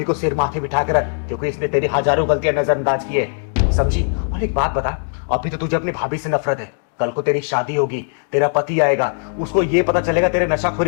को सिर माथे बिठा कर रख, क्योंकि इसने तेरी हजारों गलतियां नजरअंदाज की है, समझी? और एक बात बता, अभी तो तुझे अपनी भाभी से नफरत है, कल को तेरी शादी होगी, तेरा पति आएगा, उसको ये पता चलेगा तेरे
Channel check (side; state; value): right; silent; digital silence